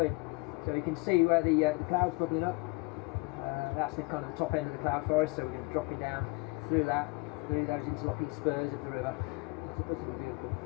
So you can see where the clouds bubbling up. That's the kind of the top end of the cloud forest, so we're going to be dropping down through that, through those interlocking spurs of the river. It's beautiful.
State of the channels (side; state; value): right; quieter; 27.3 dB